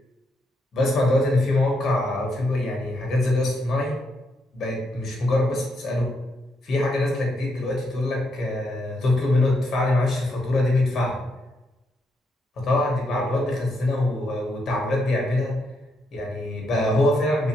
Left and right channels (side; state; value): both; normal; correlation 0.78